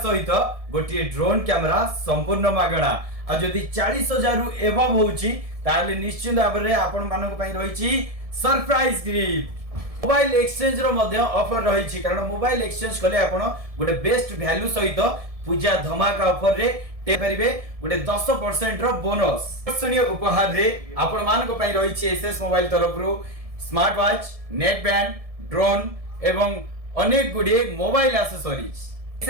सहित गोटे ड्रोन कैमरा संपूर्ण मागणा आ जदि 40,000 रु एबव होउची ताले निश्चित भाव में आपण मानक पई रहिछि सरप्राइज गिफ्ट। मोबाइल एक्सचेंज रो मध्य ऑफर रहिछि कारण मोबाइल एक्सचेंज कले आपण गोटे बेस्ट वैल्यू सहित पूजा धमाका ऑफर रे ते परिबे गोटे 10% रो बोनस आकर्षणीय उपहार रे आपण मानक पई रहिछि एसएस मोबाइल तरफ रु smart watch net band drone एवं अनेक गुडे मोबाइल एक्सेसरीज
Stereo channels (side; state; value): left; late; 1.7 ms